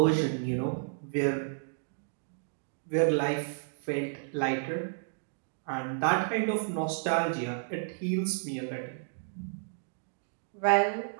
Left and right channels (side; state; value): left; silent; digital silence